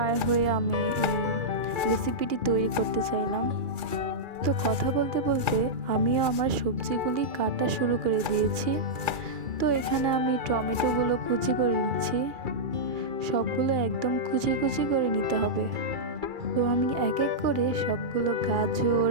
হয়ে আমি এই রেসিপিটি তৈরি করতে চাইলাম। তো কথা বলতে বলতে আমিও আমার সবজিগুলি কাটা শুরু করে দিয়েছি। তো এখানে আমি টমেটোগুলো কুচি করে নিচ্ছি। সবগুলো একদম কুচি কুচি করে নিতে হবে। তো আমি এক এক করে সবগুলো গাজর,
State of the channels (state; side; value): late; left; 2.4 ms